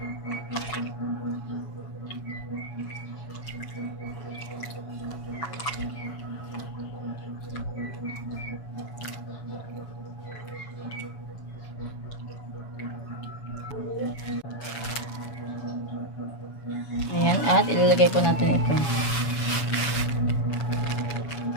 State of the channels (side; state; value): right; late; 7.1 ms